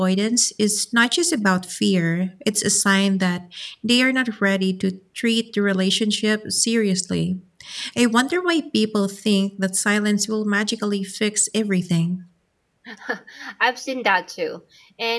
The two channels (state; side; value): identical; both; correlation 1.00